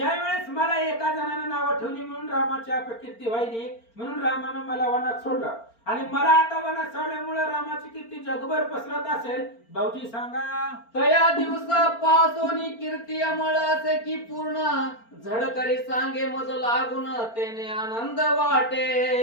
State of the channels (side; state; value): right; late; 4.4 ms